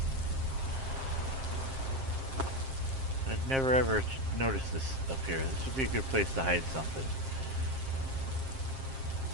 I'd never ever noticed this up here. This would be a good place to hide something.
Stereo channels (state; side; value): late; left; 7.5 ms